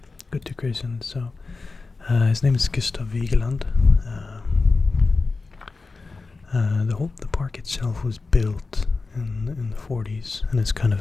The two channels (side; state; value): right; quieter; 3.9 dB